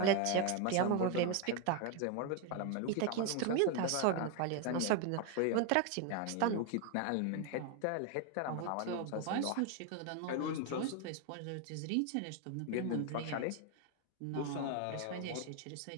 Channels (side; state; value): both; different; correlation 0.01